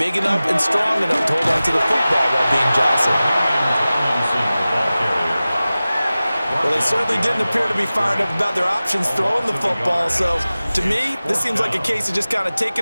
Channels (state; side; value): inverted; both; correlation -0.97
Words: enough and strong enough to hold on to the football while being jostled? Well, they certainly didn't appear to be fired up about their options throwing the football. So, to me, this seems like a case of just kind of